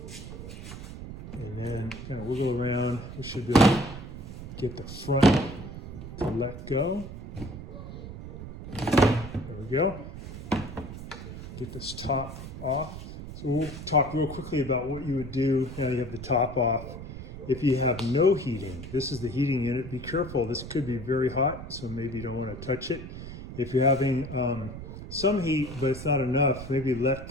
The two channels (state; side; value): noise; right; rumble, 10 dB below the sound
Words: And then kind of wiggle around. We should be able to get the front to let go. There we go. Get this top off. So we'll talk real quickly about what you would do now you have the top off. If you have no heating, this is the heating unit. Be careful, this could be very hot, so maybe you don't want to touch it. If you're having some heat, but it's not enough, maybe let